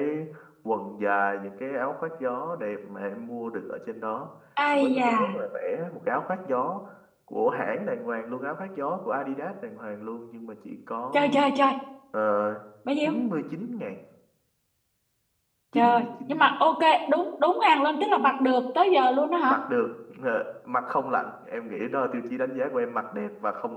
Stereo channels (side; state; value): both; identical; correlation 1.00